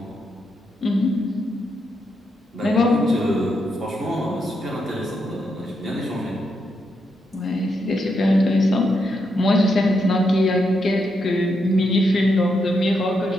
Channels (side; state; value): both; normal; correlation 0.81